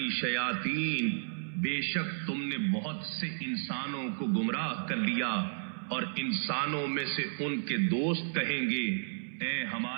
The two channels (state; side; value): silent; left; 56 dB below the other